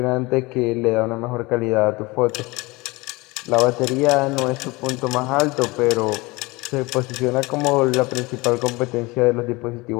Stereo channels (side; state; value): right; quieter; 23.4 dB